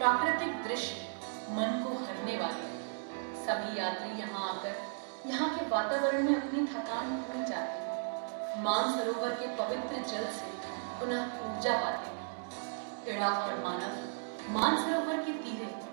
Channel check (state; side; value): silent; left; digital silence